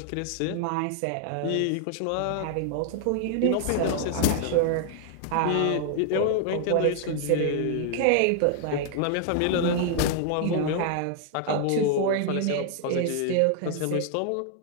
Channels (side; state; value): both; different; correlation 0.00